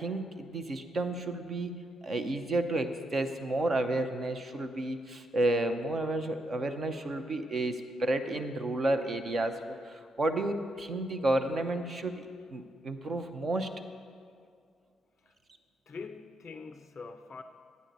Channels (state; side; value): normal; both; correlation 0.79